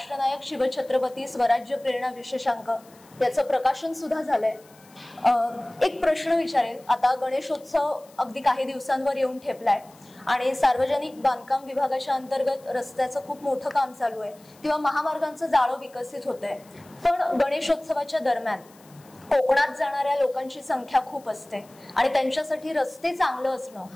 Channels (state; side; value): noise; left; hiss, 27 dB below the sound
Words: शिवछत्रपती स्वराज्य प्रेरणा विशेषांक याचं प्रकाशन सुद्धा झालंय. एक प्रश्न विचारेल. आता गणेशोत्सव अगदी काही दिवसांवर येऊन ठेपलाय आणि सार्वजनिक बांधकाम विभागाच्या अंतर्गत रस्त्याचं खूप मोठं काम चालू आहे किंवा महामार्गांचं जाळं विकसित होत आहे. पण गणेशोत्सवाच्या दरम्यान कोकणात जाणाऱ्या लोकांची संख्या खूप असते आणि त्यांच्यासाठी रस्ते चांगलं असणं